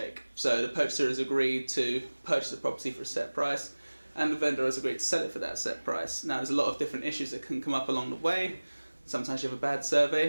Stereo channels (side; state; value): both; inverted; correlation -1.00